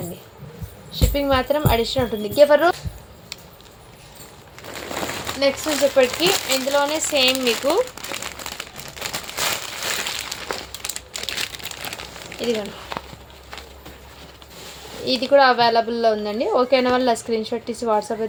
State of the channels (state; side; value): identical; both; correlation 1.00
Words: అండి. షిప్పింగ్ మాత్రం అడిషనల్ ఉంటుంది. ఎవరు నెక్స్ట్ వచ్చేప్పటికి ఇందులోనే సేమ్ మీకు ఇదిగోండి ఇది కూడా అవైలబుల్లో ఉందండి. ఓకేనా వాళ్ళ స్క్రీన్ షాట్ తీసి వాట్సాప్